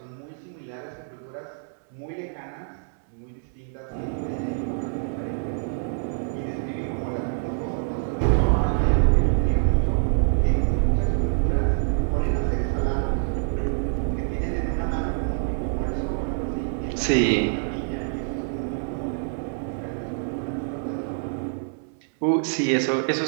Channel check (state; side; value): silent; left; digital silence